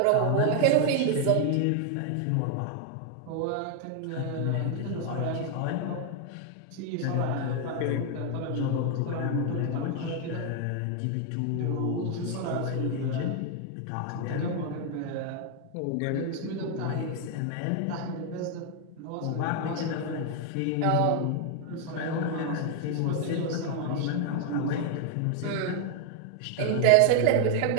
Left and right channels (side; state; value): both; different; correlation 0.00